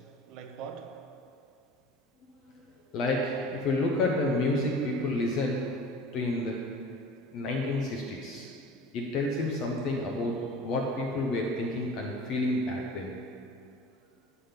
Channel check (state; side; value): normal; both; correlation 0.42